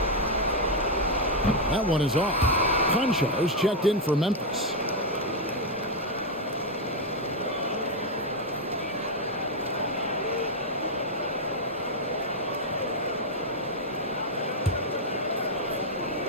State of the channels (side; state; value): both; normal; correlation 0.02